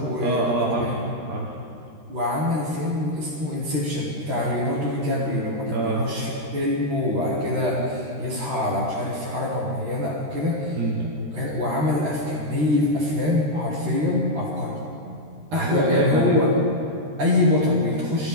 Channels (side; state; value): left; late; 13 ms